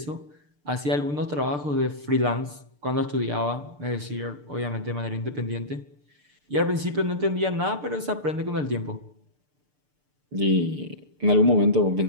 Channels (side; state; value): left; late; 6.8 ms